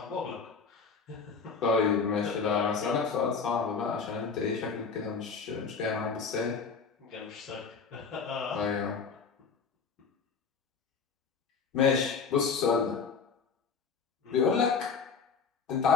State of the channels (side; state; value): right; quieter; 5.5 dB